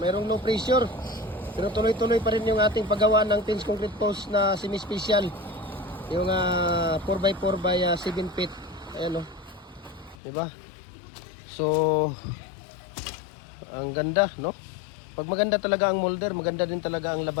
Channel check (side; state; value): right; drops out; at 10.2 s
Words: low pressure. Pero tuloy-tuloy pa rin yung ating paggawa ng Pins Concrete Post na semi-special. Yung 4x4 by 7 feet. Ayan, no? Diba? So, ang ganda, no? Pag maganda talaga ang molder, maganda din talaga ang